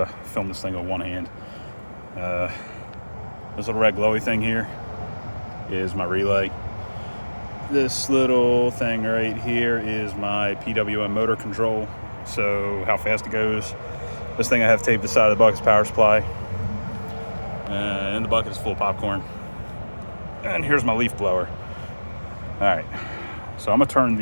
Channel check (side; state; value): both; inverted; correlation -1.00